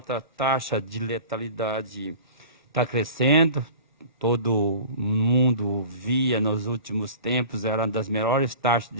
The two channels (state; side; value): inverted; both; correlation -0.40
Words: taxa de letalidade está crescendo. Todo mundo via nos últimos tempos, era uma das melhores taxas